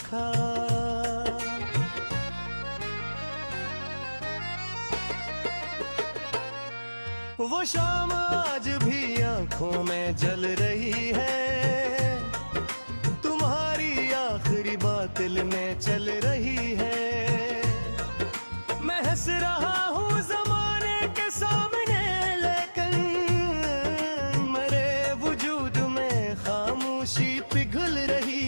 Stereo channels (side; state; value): both; inverted; correlation -1.00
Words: वो शाम आज भी आंखों में जल रही है, तुम्हारी आखिरी बात दिल में चल रही है। मैं हंस रहा हूँ ज़माने के सामने, लेकिन मेरे वजूद में खामोशी पिघल